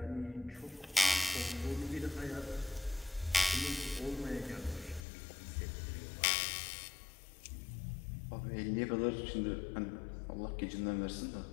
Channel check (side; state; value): right; drops out; at 5.0 s